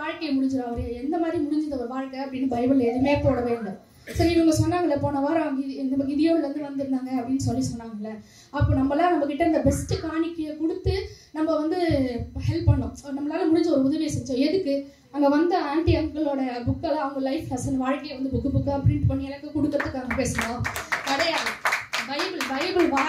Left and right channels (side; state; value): both; identical; correlation 1.00